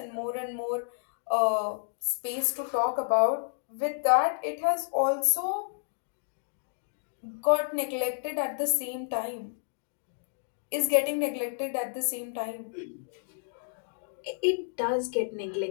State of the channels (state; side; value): silent; right; digital silence